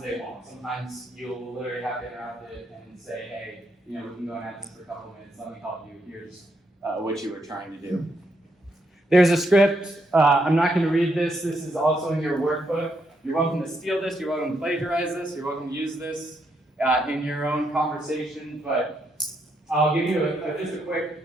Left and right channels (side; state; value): both; normal; correlation 0.78